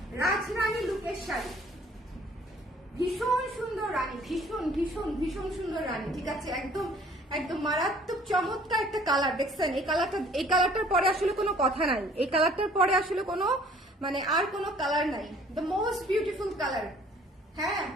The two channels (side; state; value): both; normal; correlation 0.55